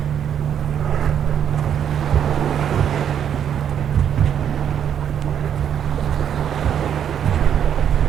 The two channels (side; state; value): left; quieter; 8.9 dB